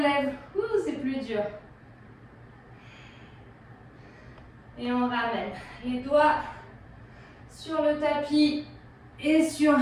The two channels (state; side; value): identical; both; correlation 1.00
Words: Ouh, c'est plus dur. Et on ramène les doigts sur le tapis et sur